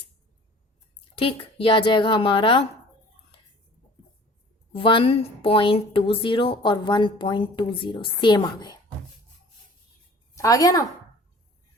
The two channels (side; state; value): both; normal; correlation 0.48